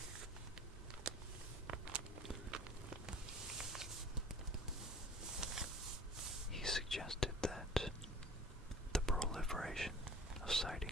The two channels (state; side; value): normal; both; correlation 0.46